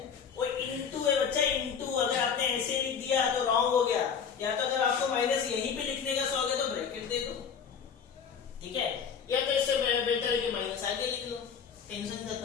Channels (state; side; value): quieter; right; 6.9 dB